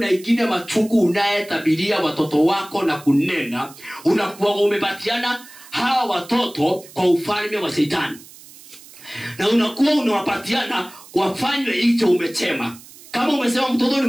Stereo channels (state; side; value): noise; right; hiss, 20 dB below the sound